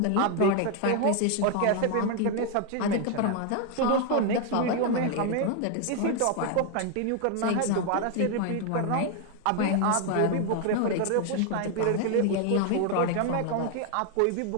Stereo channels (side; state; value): both; different; correlation 0.01